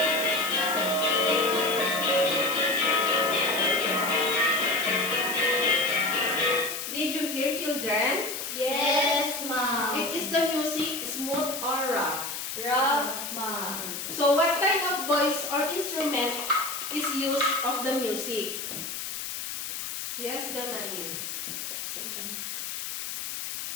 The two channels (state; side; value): noise; left; hiss, 5 dB below the sound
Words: Did you hear, children? Yes, ma'am. Is the music smooth or rough? Rough, ma'am. So what kind of voice or instrument is used of the music? Yes, Jonathan.